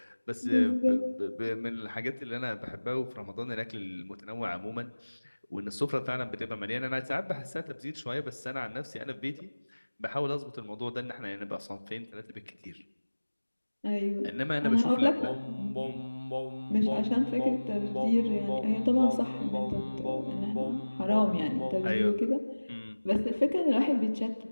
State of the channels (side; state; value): both; inverted; correlation -1.00